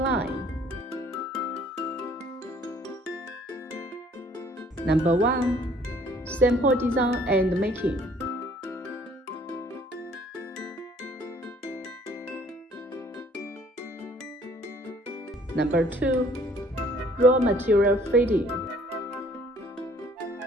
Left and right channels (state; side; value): normal; both; correlation 0.58